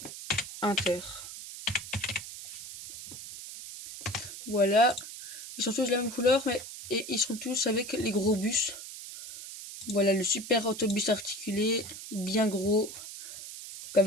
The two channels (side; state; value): right; noise; hiss, 11 dB below the sound